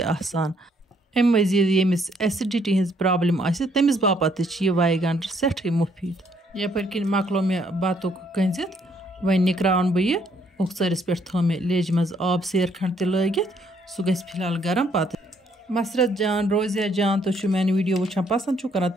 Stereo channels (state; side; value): normal; both; correlation 0.68